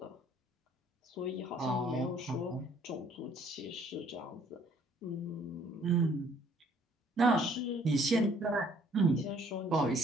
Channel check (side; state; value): both; normal; correlation 0.60